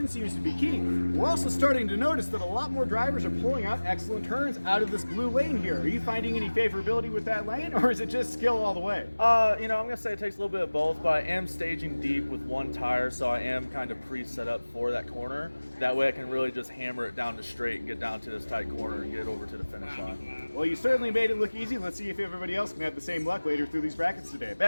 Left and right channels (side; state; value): both; inverted; correlation -1.00